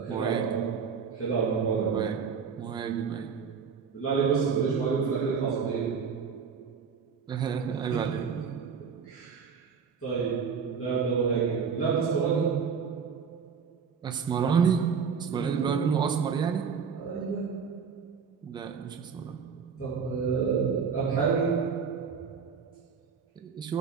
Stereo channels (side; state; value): left; quieter; 6.2 dB